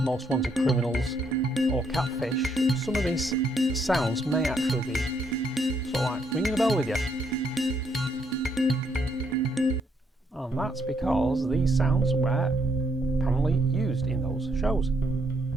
Wanted Criminals or Catfish, some of these sounds may actually be sort of like ringing a bell with you. And that's because these sounds were apparently used in those shows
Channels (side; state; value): both; normal; correlation 0.73